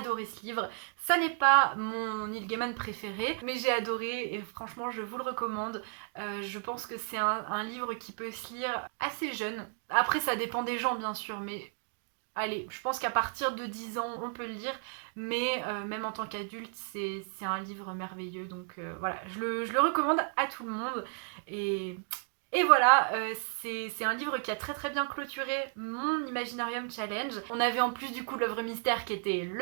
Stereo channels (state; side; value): silent; left; 55 dB below the other